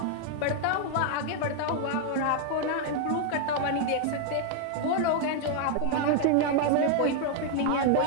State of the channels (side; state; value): both; different; correlation 0.00